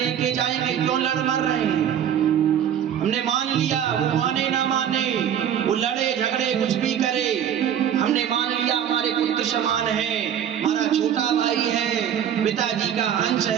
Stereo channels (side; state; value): left; quieter; 9.4 dB